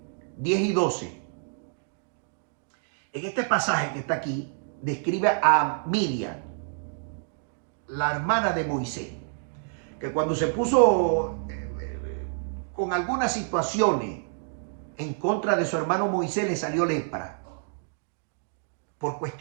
10 y 12. En este pasaje que está aquí, describe a Miriam, la hermana de Moisés, que cuando se puso con algunas situaciones en contra de su hermano Moisés, le salió lepra por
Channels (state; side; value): silent; left; digital silence